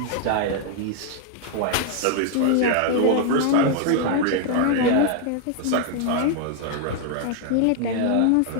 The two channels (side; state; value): both; different; correlation 0.00